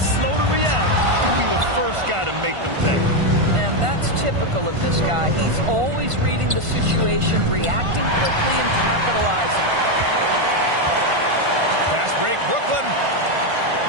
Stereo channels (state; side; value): late; left; 1.5 ms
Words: slow to react, he'll be the first guy to make them pay. And that's typical of this guy. He's always reading the situation, reacting quickly, and capitalizing. Fast break, Brooklyn.